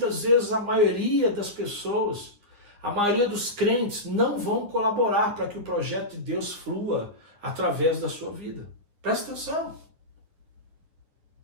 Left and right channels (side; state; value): left; late; 9.6 ms